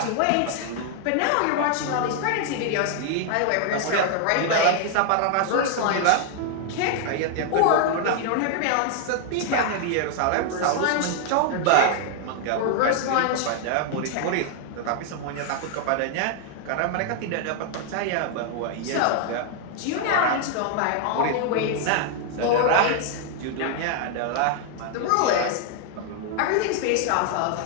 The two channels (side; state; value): both; different; correlation 0.00